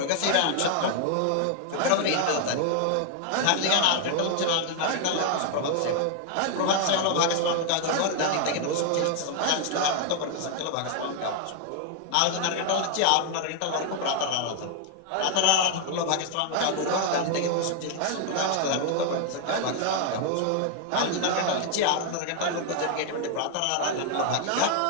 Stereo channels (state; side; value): different; both; correlation 0.00